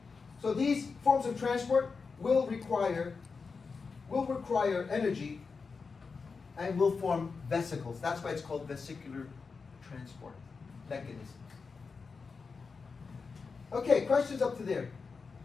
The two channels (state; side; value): quieter; right; 4.9 dB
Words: So these forms of transport will require energy and will form vesicles. That's why it's called vesicular transport mechanisms. Okay, questions up to there.